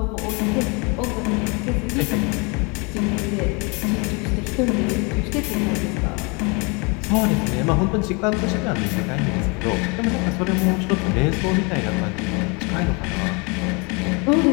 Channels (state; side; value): quieter; right; 30.5 dB